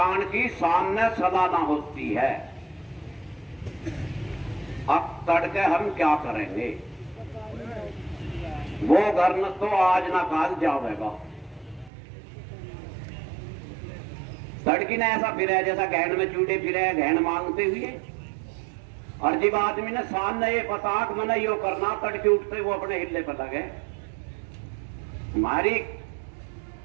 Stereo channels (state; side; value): drops out; left; at 11.9 s